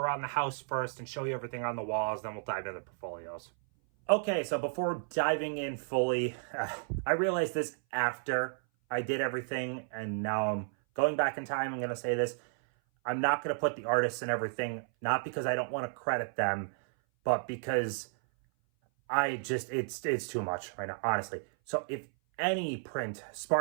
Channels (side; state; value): left; silent; 56 dB below the other